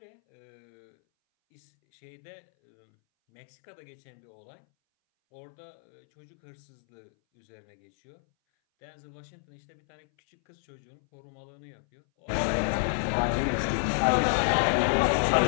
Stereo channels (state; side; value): silent; right; 58 dB below the other